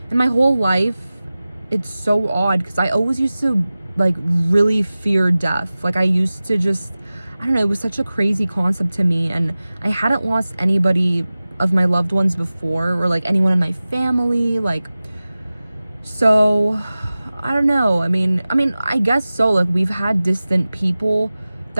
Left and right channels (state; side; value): inverted; both; correlation -0.97